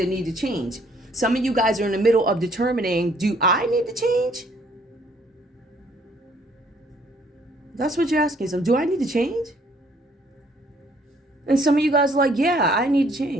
need to change. Some of you guys are in the middle of determining, do I need to change? That's what you're asking. So do I need to change? And some of you guys are like, yeah, I need to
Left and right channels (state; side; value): normal; both; correlation 0.64